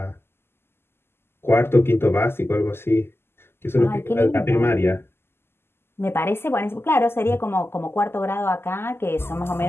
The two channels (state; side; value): late; right; 0.12 ms